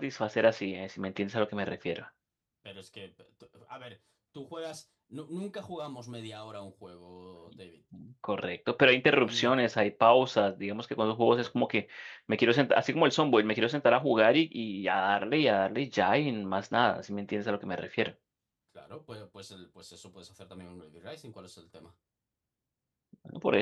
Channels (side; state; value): both; identical; correlation 1.00